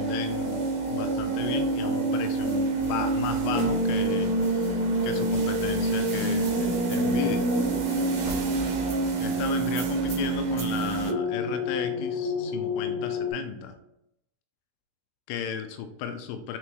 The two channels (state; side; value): late; right; 16 ms